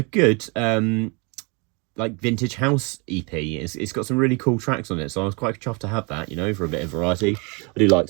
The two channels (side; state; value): left; quieter; 31.2 dB